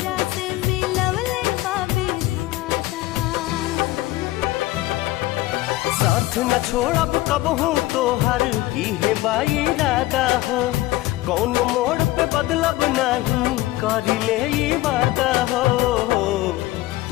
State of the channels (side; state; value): right; quieter; 17.2 dB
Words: साथ न छोड़ब कबहू तोहर इहे बाई इरादा हो। कौन मोड़ पे बदलब नहीं करिले ई वादा हो।